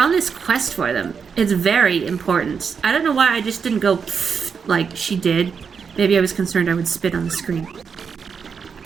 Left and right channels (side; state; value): left; quieter; 6.2 dB